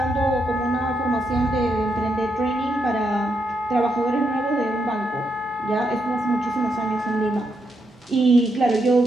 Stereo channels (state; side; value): normal; both; correlation 0.81